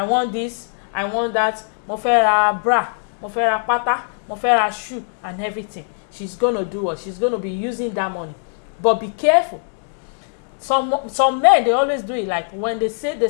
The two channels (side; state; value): right; silent; digital silence